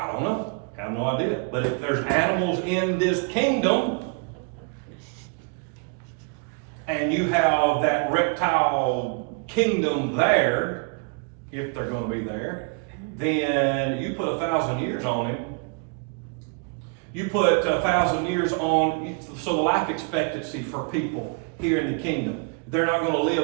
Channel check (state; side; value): quieter; left; 35.1 dB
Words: don't know. I have no idea. But if there's animals in this kingdom, and you have that reptile kingdom there, if they're going to be there, then you put 1,000 years on him. You put 1,000 years on, so the life expectancy for people here in the kingdom, they're not going to